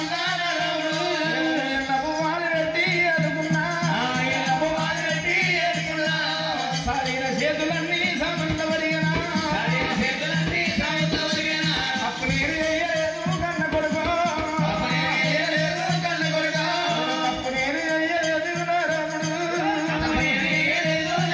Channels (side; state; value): both; identical; correlation 1.00